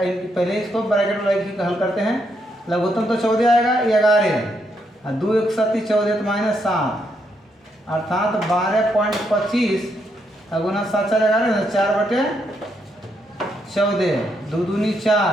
पहले इसको ब्रैकेट में हल करते हैं। लघुत्तम तो 14 आएगा, 11 और 2 1 7 14 तो -7, अर्थात 12.25 गुना 7 4 11 ना, 4/14, 2 दूनी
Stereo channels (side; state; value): both; normal; correlation 0.78